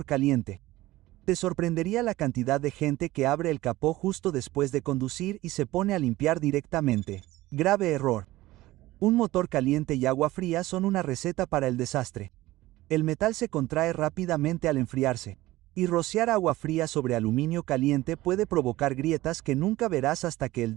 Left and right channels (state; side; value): quieter; left; 17.5 dB